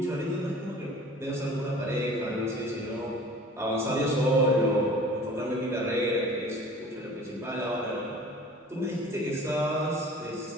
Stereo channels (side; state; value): both; normal; correlation 0.45